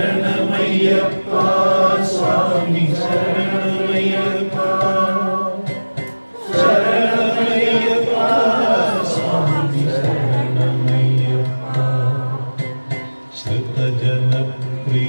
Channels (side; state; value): both; inverted; correlation -1.00